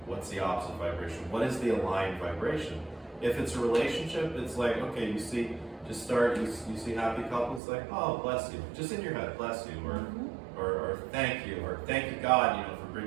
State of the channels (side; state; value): left; drops out; at 7.6 s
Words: What's the opposite vibration? What is the aligned vibration? If it's a relationship, it's like, okay, you see, just start, you see happy couples, like, oh, bless you, just in your head, bless you, or thank you God, you know, for